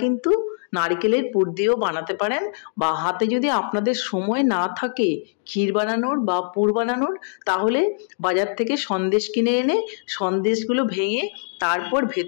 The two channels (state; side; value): silent; right; digital silence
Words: কিন্তু নারকেলের পুর দিয়েও বানাতে পারেন, বা হাতে যদি আপনাদের সময় না থাকে ক্ষীর বানানোর বা পুর বানানোর, তাহলে বাজার থেকে সন্দেশ কিনে এনে সন্দেশগুলো ভেঙে তারপর